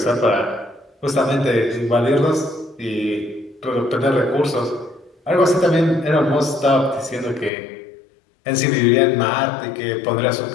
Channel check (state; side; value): drops out; right; at 7.5 s